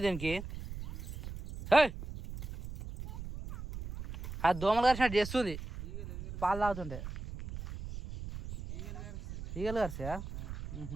దీనికి. అది దోమలు కరిచినట్టు చేస్తుంది పాలు తాగుతుంటే. ఈగలు కరిసా?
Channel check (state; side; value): noise; right; rumble, 9 dB below the sound